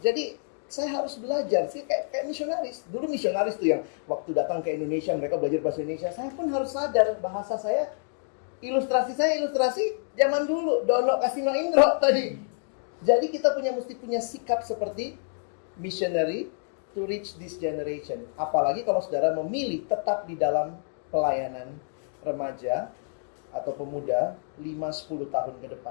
Jadi saya harus belajar sih kayak misionaris. Dulu misionaris tuh yang waktu datang ke Indonesia mereka belajar bahasa Indonesia. Saya pun harus sadar bahasa saya, ilustrasi zaman dulu. Dono Kasino Indro tadi. Jadi kita mesti punya sikap seperti missionary to reach this generation. Apalagi kalau saudara memilih tetap di dalam pelayanan remaja atau pemuda 5-10 tahun ke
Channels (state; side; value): silent; right; digital silence